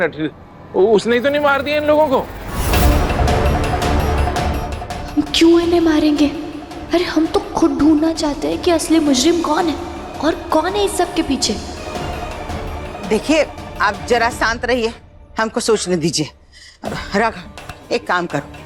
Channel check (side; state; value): both; identical; correlation 1.00